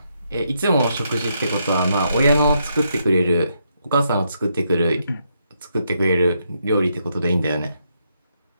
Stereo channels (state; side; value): inverted; both; correlation -0.78